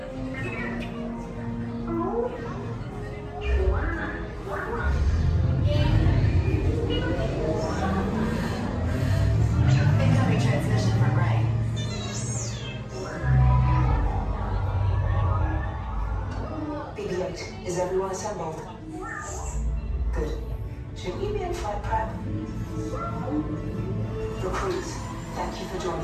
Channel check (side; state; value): both; identical; correlation 1.00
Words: Incoming transmission from Ray. BB-8, is everyone assembled? Good. Should we be in flight prep? Recruits, thank you for